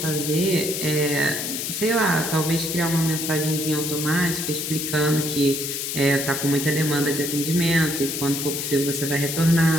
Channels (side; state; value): left; noise; hiss, 3 dB below the sound